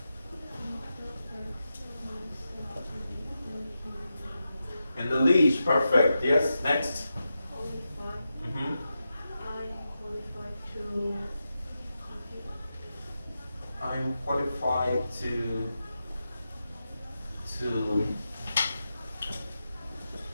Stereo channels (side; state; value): both; inverted; correlation -0.89